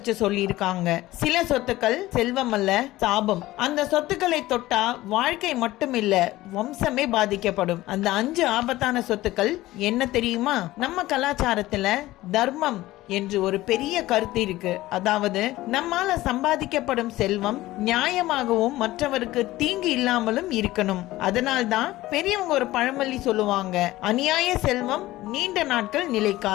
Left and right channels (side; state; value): right; quieter; 17.0 dB